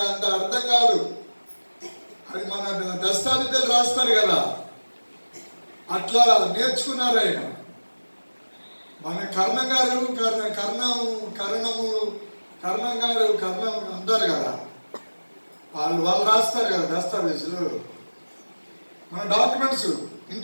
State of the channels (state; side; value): inverted; both; correlation -1.00